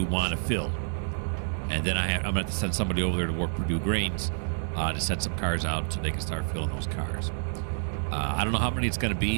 want to fill? And then I'm going to have to send somebody over there to work Purdue Grains to set some cars out so they can start filling those cars. I don't know how many it's going to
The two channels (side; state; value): left; silent; digital silence